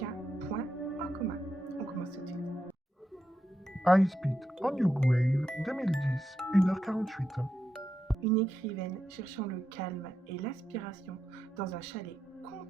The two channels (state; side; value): normal; both; correlation 0.85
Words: point en commun. On commence tout de suite. High Speed on Your Grave 2010, 1h48. Une écrivaine cherchant le calme et l'aspiration dans un chalet